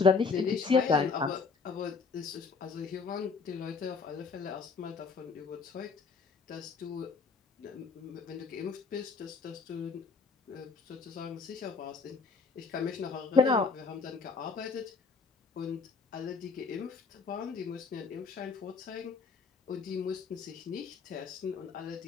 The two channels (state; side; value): quieter; right; 4.8 dB